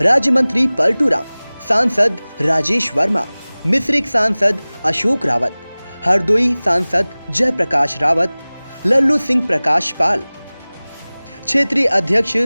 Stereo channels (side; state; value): both; inverted; correlation -0.99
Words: राज्य मंत्री पलटू राम, सांसद राजेश वर्मा, मिश्रिक सांसद अशोक रावत, हरदोई सांसद जयप्रकाश रावत, लल्लू सिंह प्रकाश पाल, क्षेत्रीय अध्यक्ष